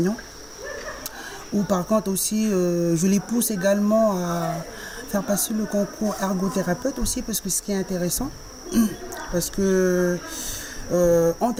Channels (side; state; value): both; identical; correlation 1.00